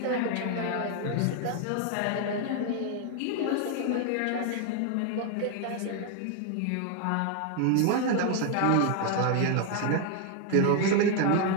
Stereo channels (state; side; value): different; both; correlation 0.00